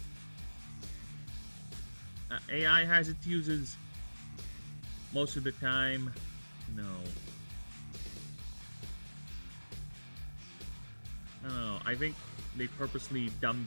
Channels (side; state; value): both; inverted; correlation -1.00